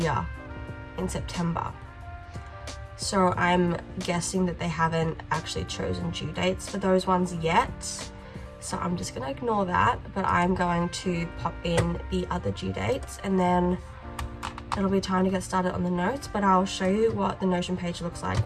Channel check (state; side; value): identical; both; correlation 1.00